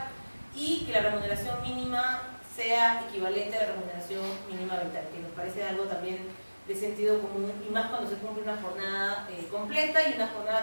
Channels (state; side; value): inverted; both; correlation -1.00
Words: y que la remuneración mínima sea equivalente a la remuneración mínima vital, que nos parece algo también de sentido común, y más cuando se cumple una jornada completa, y una